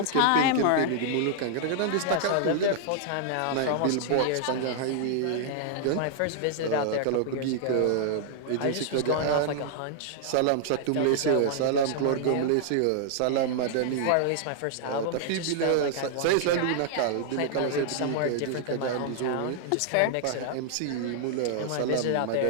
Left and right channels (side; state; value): both; different; correlation -0.01